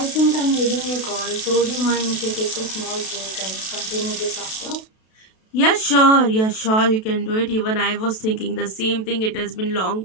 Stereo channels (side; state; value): right; late; 32 ms